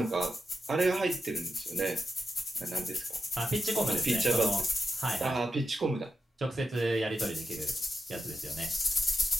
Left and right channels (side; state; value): both; normal; correlation 0.87